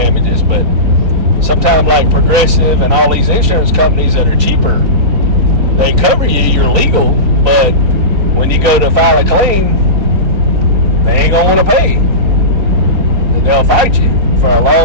but sometimes like Progressive and all these insurance companies that are cheaper, they cover you, you're legal, but when you go to file a claim, they ain't gonna want to pay. They'll fight you for a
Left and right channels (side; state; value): left; late; 4.0 ms